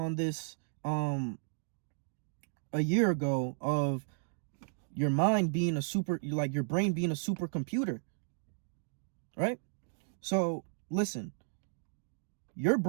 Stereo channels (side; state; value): left; silent; digital silence